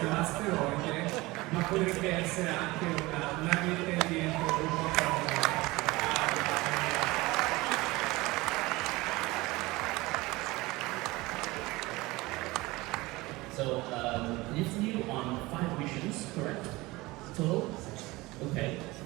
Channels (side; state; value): left; quieter; 21.2 dB